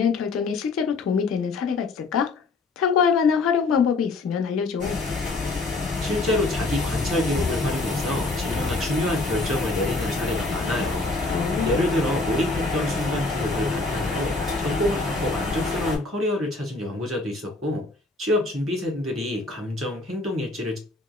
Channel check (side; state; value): right; quieter; 3.3 dB